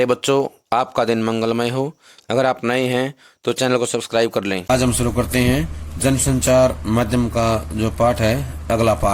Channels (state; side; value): identical; both; correlation 1.00